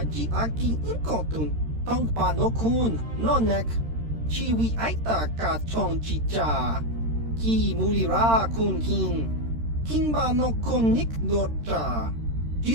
Ji Aki Inkotun, Tong Pa Nokun, Nonek, Chiwi Aita Ka Chong Chicha, Ki Mulira Kun King, Kimba Nokun Nik Dorcha,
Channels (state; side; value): late; left; 13 ms